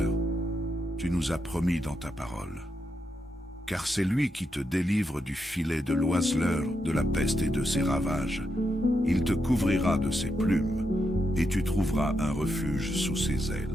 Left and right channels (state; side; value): normal; both; correlation 0.83